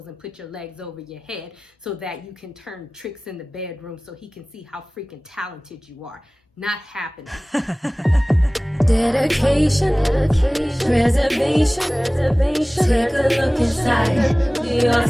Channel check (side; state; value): both; normal; correlation 0.98